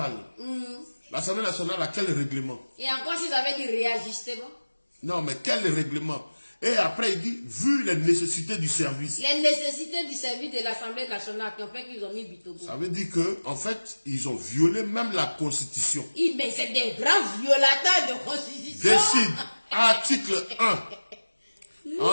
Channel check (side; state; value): both; inverted; correlation -1.00